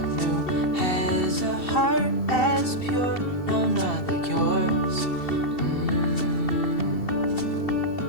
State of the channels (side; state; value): right; late; 2.7 ms